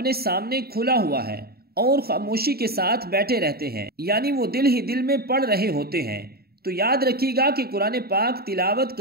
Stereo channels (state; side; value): late; left; 0.45 ms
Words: سامنے کھلا ہوا ہے اور خاموشی کے ساتھ بیٹھے رہتے ہیں، یعنی وہ دل ہی دل میں پڑھ رہے ہوتے ہیں۔ تو یاد رکھیے گا کہ قرآن پاک تلاوت